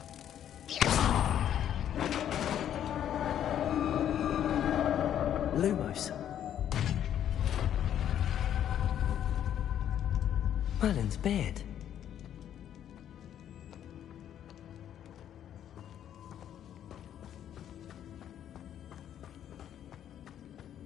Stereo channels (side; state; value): right; quieter; 10.3 dB